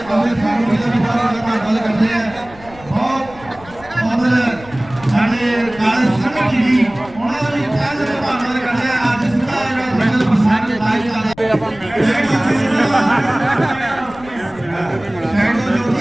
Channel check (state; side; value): noise; left; rumble, 20 dB below the sound